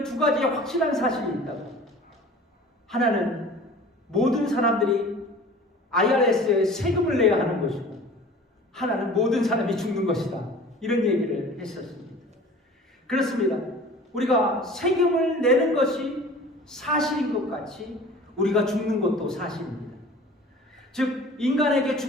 두 가지의 확실한 사실이 있다고. 하나는 모든 사람들이 IRS에 세금을 내야 하는 것이고, 하나는 모든 사람이 죽는 것이다. 이런 얘기를 했었습니다. 그렇습니다. 우리가 세금을 내는 것이 사실인 것 같이 우리가 죽는 것도 사실입니다. 즉 인간에게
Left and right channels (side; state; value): both; normal; correlation 0.43